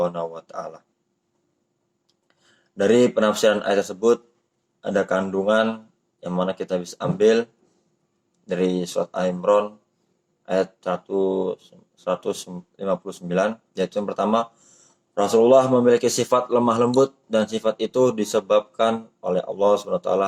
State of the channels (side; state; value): both; identical; correlation 1.00